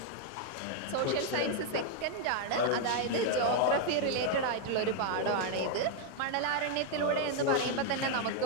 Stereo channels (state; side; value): different; both; correlation 0.00